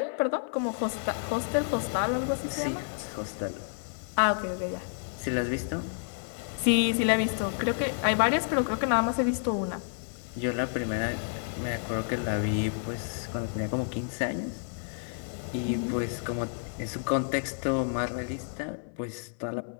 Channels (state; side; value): silent; right; 58 dB below the other